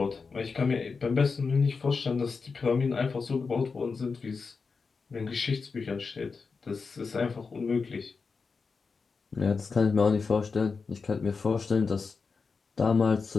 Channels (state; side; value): quieter; right; 4.8 dB